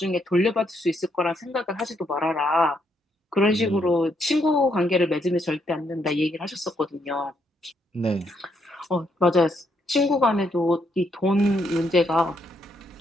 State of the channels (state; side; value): normal; both; correlation 0.75